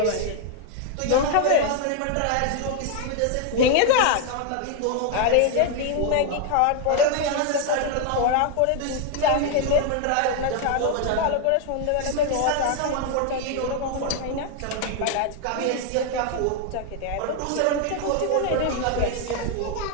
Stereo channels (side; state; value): both; different; correlation 0.00